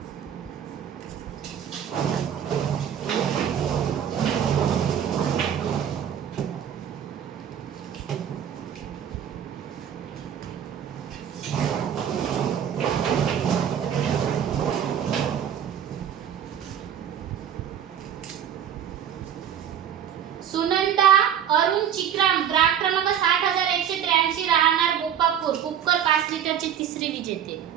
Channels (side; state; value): left; quieter; 9.2 dB